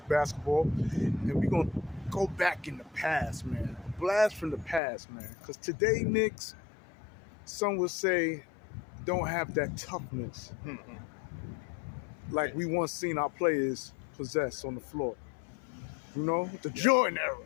basketball. And we're going to go back in the past, man. A blast from the past, man. Because today, Knicks, some would say, don't have that toughness like we once seen our players possess on the floor. You know, the Jordan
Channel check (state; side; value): drops out; right; at 4.8 s